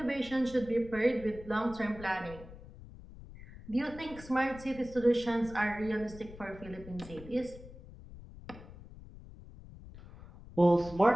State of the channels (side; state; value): left; noise; rumble, 17 dB below the sound